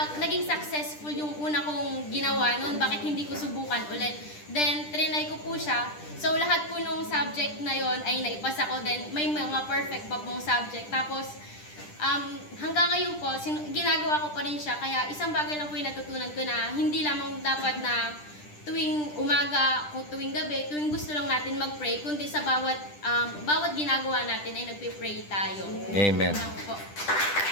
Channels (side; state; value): right; late; 10 ms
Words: naging successful yung una kong ginawa noon, bakit hindi ko subukan ulit? Then, trinay ko po siya. So, lahat po nung subject na yon ay naipasa ko. Then, may mga perfect pa pong subject. Tapos, hanggang ngayon po, ginagawa ko pa rin siya. Kaya, isang bagay lang po yung natutunan ko na hindi lamang dapat na tuwing umaga o tuwing gabi, tuwing gusto lang natin mag-pray, kundi sa bawat ginagawa natin ay nagpe-pray tayo. Amen. Lang po.